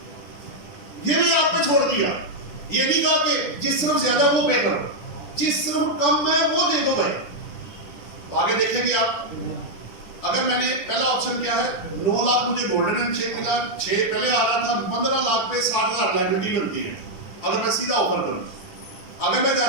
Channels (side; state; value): right; late; 10 ms